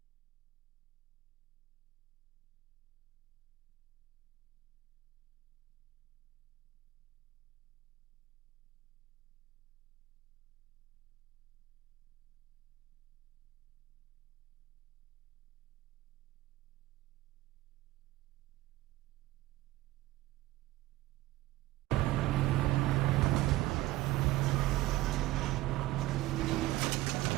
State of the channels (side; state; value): left; quieter; 17.3 dB